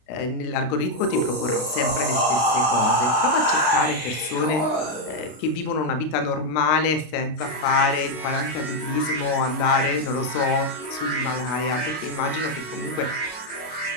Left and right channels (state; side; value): late; right; 32 ms